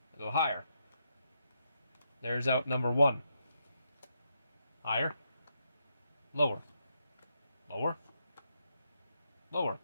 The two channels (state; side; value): inverted; both; correlation -0.80